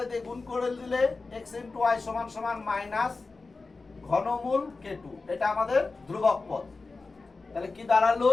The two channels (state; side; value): quieter; right; 3.9 dB